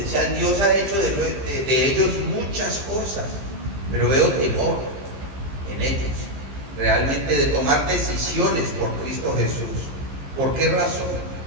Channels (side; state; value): left; late; 15 ms